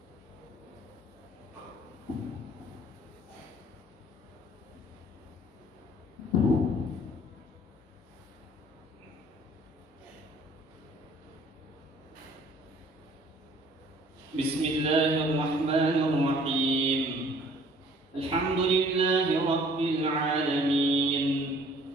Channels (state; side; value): normal; both; correlation 0.55